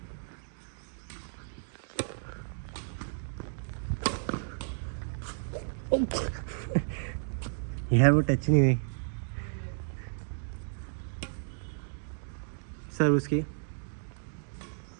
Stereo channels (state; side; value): silent; left; digital silence